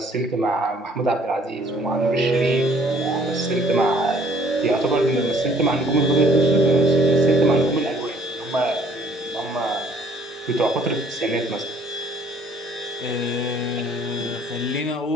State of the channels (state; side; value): normal; both; correlation 0.59